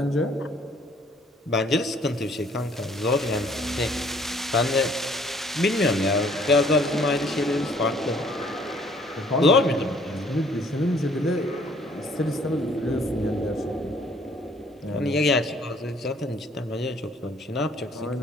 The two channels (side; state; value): both; normal; correlation 0.59